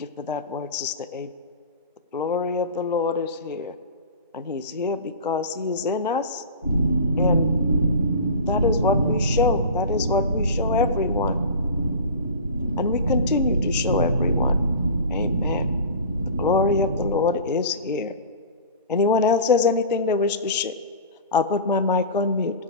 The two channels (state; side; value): inverted; both; correlation -0.34